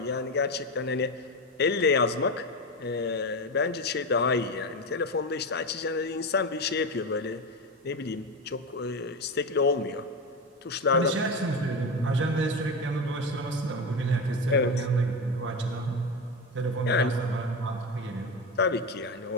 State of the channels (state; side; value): normal; both; correlation 0.18